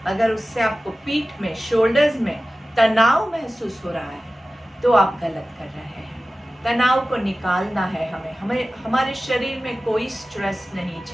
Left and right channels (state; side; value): normal; both; correlation 0.96